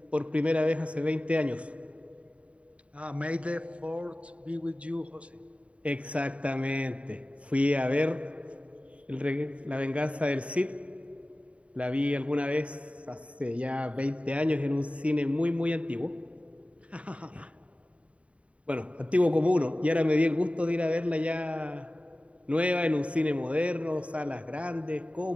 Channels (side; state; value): left; late; 0.064 ms